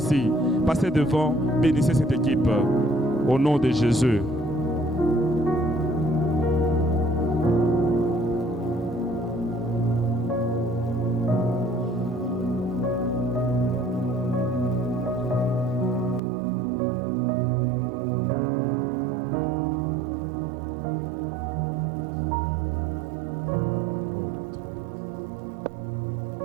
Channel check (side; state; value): left; drops out; at 16.2 s